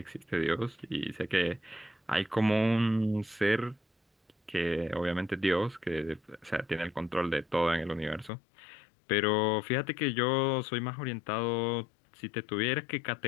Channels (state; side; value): drops out; right; at 8.3 s